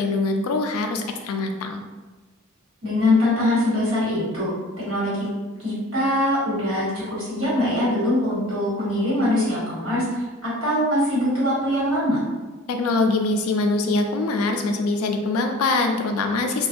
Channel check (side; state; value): both; normal; correlation 0.46